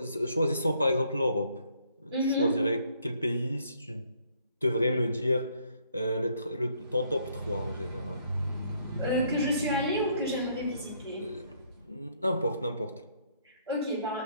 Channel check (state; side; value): inverted; both; correlation -0.67